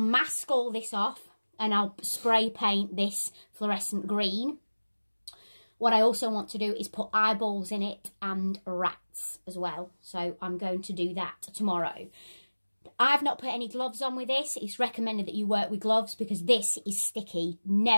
all this off, and I'll spray paint this fluorescent green. What I also want to do is put eyeballs in it and rats as well. So I'm going to do that tomorrow. I've not put any gloves on with this. It's recommended that you work with gloves because this is sticky.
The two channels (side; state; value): both; inverted; correlation -1.00